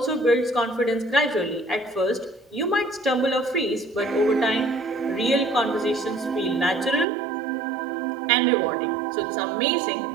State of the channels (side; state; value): left; drops out; at 7.1 s